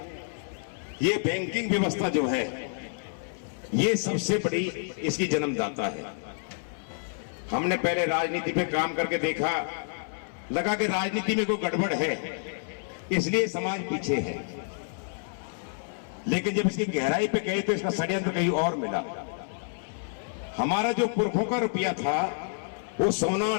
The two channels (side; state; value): right; silent; 59 dB below the other